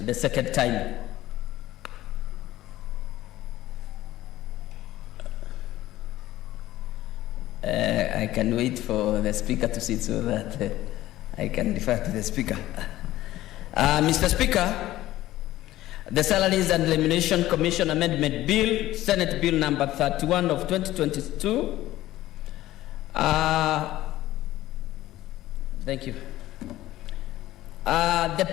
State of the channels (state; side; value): quieter; right; 15.3 dB